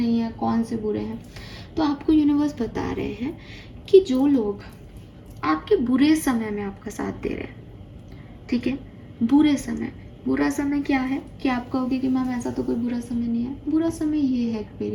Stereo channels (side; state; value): both; identical; correlation 1.00